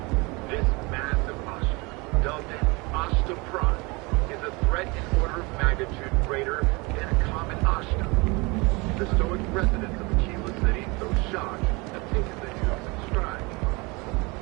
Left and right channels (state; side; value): quieter; left; 26.5 dB